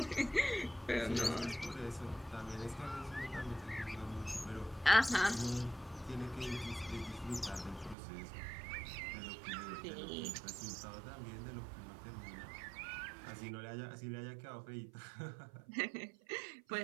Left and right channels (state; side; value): drops out; left; at 8.0 s